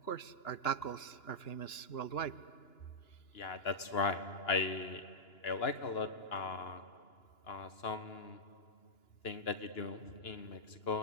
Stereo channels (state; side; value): late; right; 2.9 ms